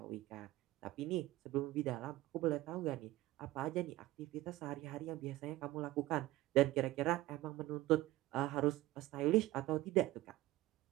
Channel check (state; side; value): quieter; left; 16.9 dB